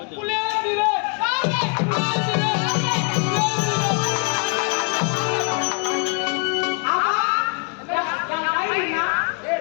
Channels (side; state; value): right; quieter; 37.6 dB